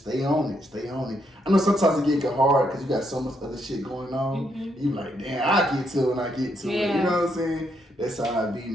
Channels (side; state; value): both; normal; correlation 0.76